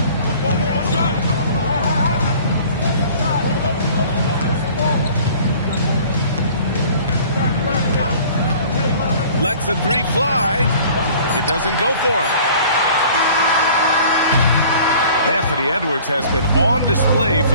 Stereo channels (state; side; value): inverted; both; correlation -0.49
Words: Lets the three fly. It doesn't go for him. Anthony Edwards has been on display